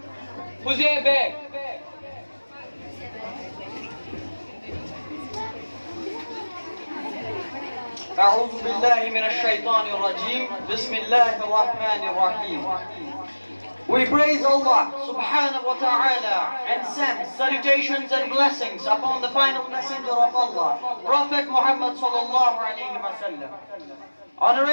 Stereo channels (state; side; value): inverted; both; correlation -1.00